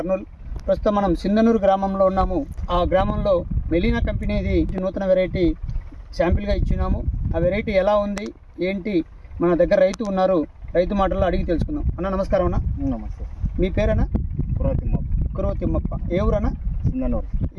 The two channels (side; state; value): both; identical; correlation 1.00